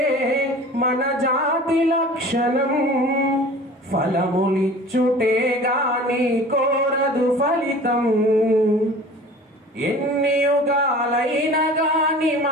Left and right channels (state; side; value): normal; both; correlation 0.42